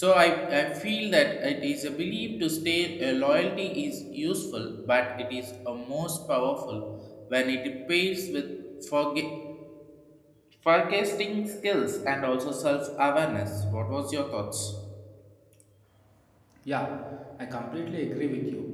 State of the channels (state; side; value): identical; both; correlation 1.00